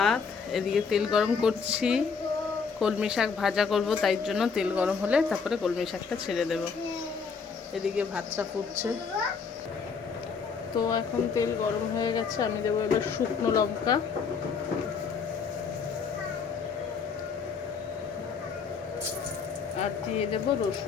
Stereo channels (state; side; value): quieter; right; 5.6 dB